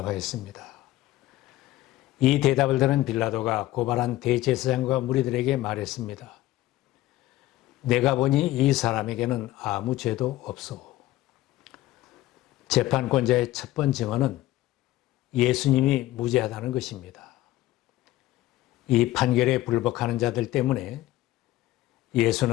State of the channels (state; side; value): quieter; right; 15.9 dB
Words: 이 대답을 들은 빌라도가 고발한 대제사장과 무리들에게 말했습니다. 내가 보니 이 사람에게는 아무 죄도 없소. 재판권자의 첫 번째 증언은 예수님이 무죄하다는 것입니다. 이 판결에 불복하는 자들 때문에